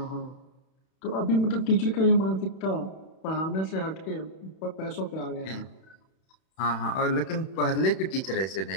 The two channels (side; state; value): right; late; 31 ms